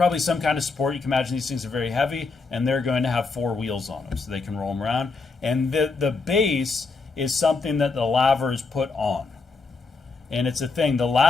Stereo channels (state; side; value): quieter; right; 4.2 dB